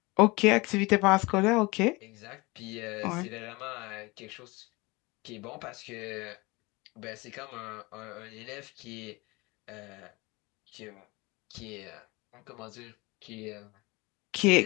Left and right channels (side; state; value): right; quieter; 24.3 dB